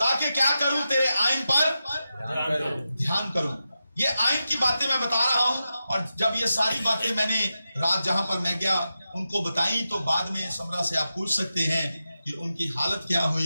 क्या करूं? तेरे आइन पर ध्यान करूं। ये आइन की बातें मैं बता रहा हूं, और जब ये सारी बातें मैंने रात जहां पर मैं गया उनको बताई, तो बाद में समरा से आप पूछ सकते हैं कि उनकी हालत क्या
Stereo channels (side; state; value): both; inverted; correlation -0.90